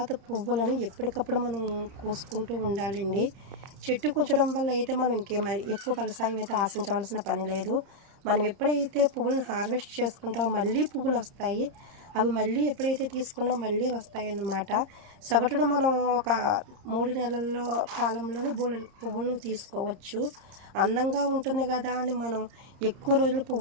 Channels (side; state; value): left; late; 30 ms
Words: పువ్వులను ఎప్పటికప్పుడు మనం కోసుకుంటూ ఉండాలండి. చెట్టు కూర్చడం వల్ల అయితే మనం ఎక్కువ ఫలసాయం అయితే ఆశించవలసిన పని లేదు. మనం ఎప్పుడైతే పువ్వులను హార్వెస్ట్ చేసుకుంటామో మళ్ళీ పువ్వులు వస్తాయి. అవి మళ్ళీ ఎప్పుడైతే తీసుకున్నామో మళ్ళీ వస్తాయి అన్నమాట. సగటున మనం ఒక 3 నెలల్లో కాలంలోనే పువ్వులను తీసుకోవచ్చు. అందంగా ఉంటుంది కదా అని మనం ఎక్కువ రోజులు